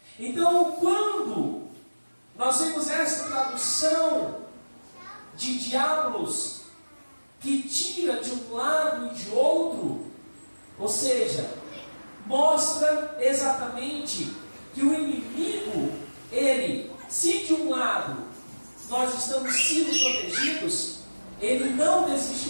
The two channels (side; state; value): both; inverted; correlation -1.00